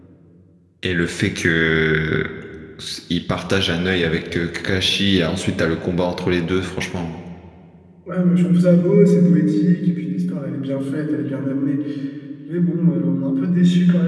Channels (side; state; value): both; identical; correlation 1.00